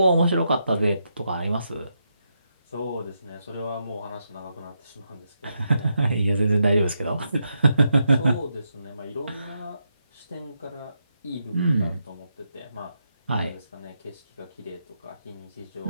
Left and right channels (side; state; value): both; inverted; correlation -0.83